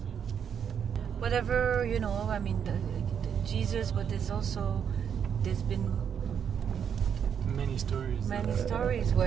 Whatever, the Jesus, but there's been many stories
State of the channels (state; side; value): quieter; left; 7.9 dB